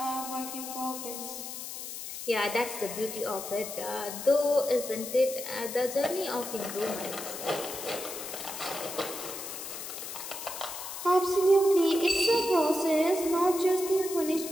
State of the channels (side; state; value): left; noise; hiss, 8 dB below the sound